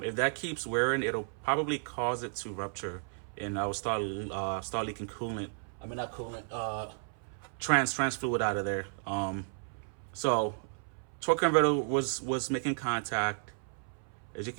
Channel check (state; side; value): silent; left; 56 dB below the other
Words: that keeps wearing, it'll probably cause it to rupture, and I will start leaking coolant. I mean, not coolant, trans fluid out of there. So torque converter was making contact. As you